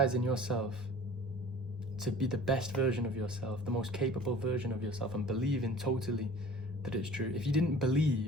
yourself to be the best version of yourself, the most capable version of yourself, and believing totally that it's true. If you didn't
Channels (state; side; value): normal; both; correlation 0.45